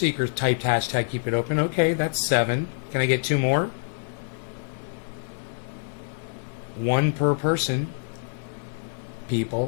typed hashtag keep it open. Okay, that's 7. Can I get 2 more? 1 per person.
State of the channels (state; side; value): silent; right; digital silence